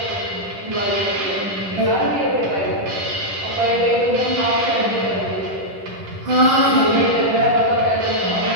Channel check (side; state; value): left; late; 10 ms